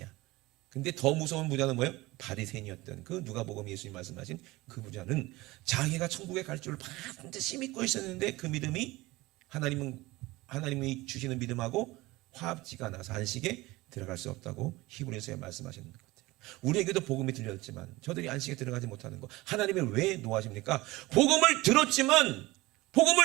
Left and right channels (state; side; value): quieter; left; 20.3 dB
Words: 근데 더 무서운 부자는 뭐예요? 바리새인이었던 그 누가복음 예수님 말씀하신 그 부자는 자기가 천국에 갈 줄 반드시 믿고 있었는데 그 믿음이 하나님이 주시는 믿음하고 화합지가 나서 안식에 들어갈 수 없다고 히브리서에 말씀하시는 것 같아요. 우리에게도 복음이 들렸지만 저들이 안식에 들어가지 못하는 거 하나님이 왜 노하십니까? 복음을 들었지만